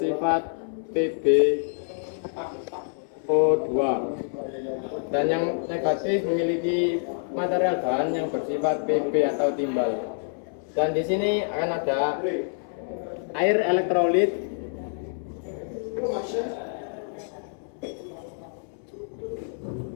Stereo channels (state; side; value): silent; right; 60 dB below the other